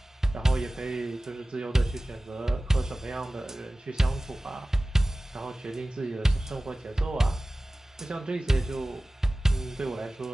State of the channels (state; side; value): normal; both; correlation 0.97